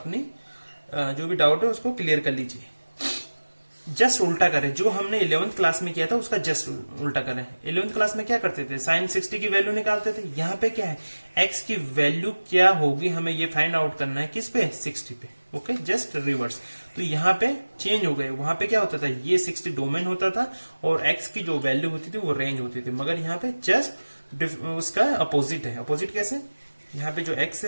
जो भी डाउट है उसको क्लियर कर लीजिए। जस्ट उल्टा करें, जो हमने 11th क्लास में किया था उसका जस्ट उल्टा करें। 11th क्लास में क्या करते थे, साइन 60 की वैल्यू निकालते थे। यहाँ पे क्या है, एक्स की वैल्यू क्या होगी हमें ये फाइंड आउट करना है, किस पे, 60 पे। Okay, just reverse. तो यहाँ पे चेंज हो गए, वहां पे क्या होता था, ये 60 डोमेन होता था और एक्स की जो वैल्यू होती थी वो रेंज होती थी, मगर यहाँ पे जस्ट उसका अपोजिट है। अपोजिट कैसे, यहाँ पे जो एक्स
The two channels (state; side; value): inverted; both; correlation -1.00